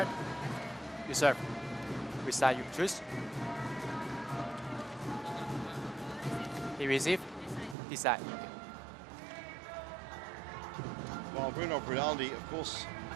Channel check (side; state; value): left; drops out; at 7.8 s